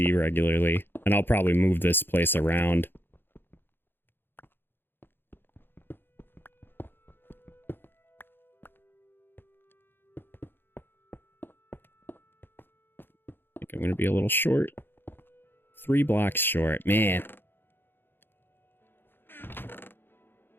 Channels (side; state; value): right; late; 0.10 ms